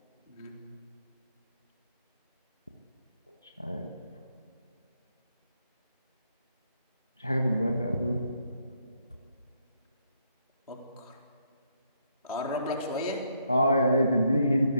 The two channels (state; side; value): inverted; both; correlation -0.74